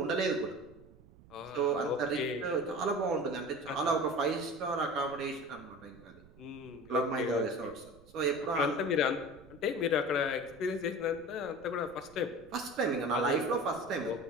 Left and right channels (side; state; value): right; noise; rumble, 23 dB below the sound